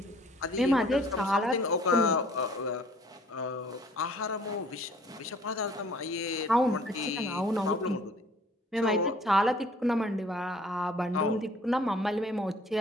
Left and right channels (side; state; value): both; normal; correlation 0.56